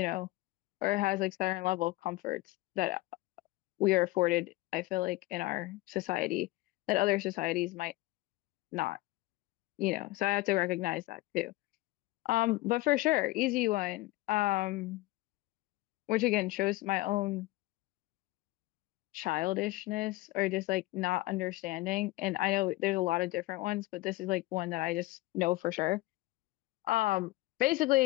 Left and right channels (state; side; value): quieter; right; 19.3 dB